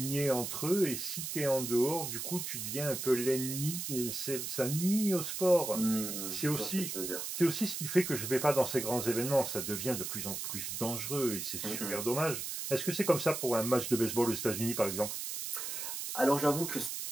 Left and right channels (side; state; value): right; noise; hiss, 5 dB below the sound